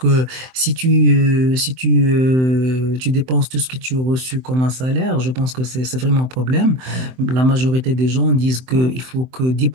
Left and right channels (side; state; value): left; late; 23 ms